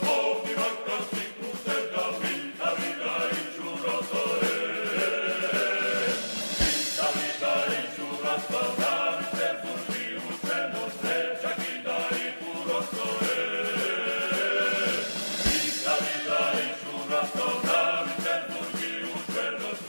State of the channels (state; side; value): inverted; both; correlation -1.00